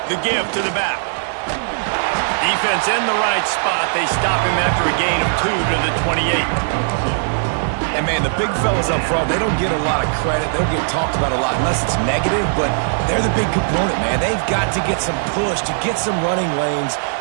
The give to the back. Defense in the right spot. They stop him after a gain of 2 to the 28. And, man, the big fellas up front, they don't get a lot of credit. They don't get talked about a lot unless it's negative, but they're the big component, man. They've got to get some push, to get some running lanes,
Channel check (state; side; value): silent; left; digital silence